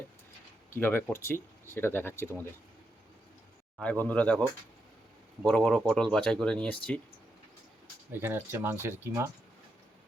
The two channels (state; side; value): normal; both; correlation 0.83